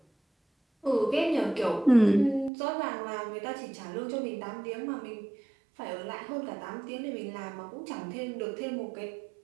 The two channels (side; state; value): left; drops out; at 2.5 s